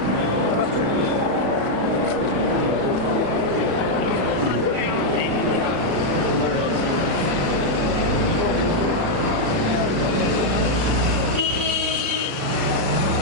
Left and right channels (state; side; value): late; left; 36 ms